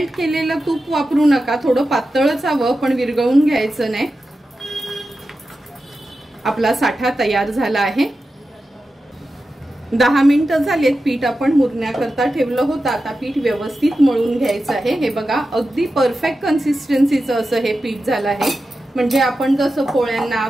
केलेलं तूप वापरू नका, थोडं पातळच हवं पण विरघळून घ्यायचं नाही। आपला साठा तयार झाला आहे। 10 मिनिटं झालेत। पीठ आपण मुरण्याकरता ठेवलं होतं, आता पीठ व्यवस्थित मळून घ्यायचं आहे। हे बघा अगदी परफेक्ट कन्सिस्टन्सीचं असं हे पीठ झालं आहे, म्हणजे आपण जसं पोळ्यांना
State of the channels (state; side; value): normal; both; correlation 0.92